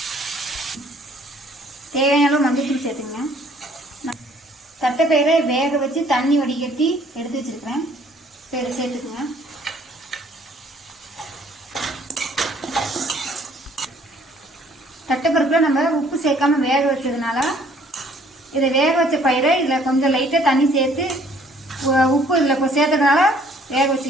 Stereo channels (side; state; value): both; normal; correlation 0.59